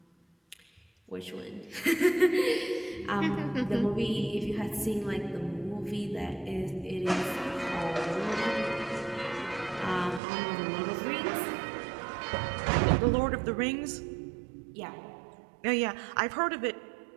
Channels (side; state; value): left; drops out; at 10.2 s